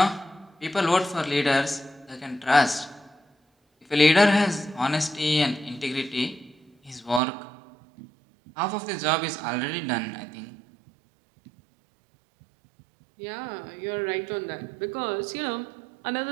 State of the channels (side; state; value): left; drops out; at 7.2 s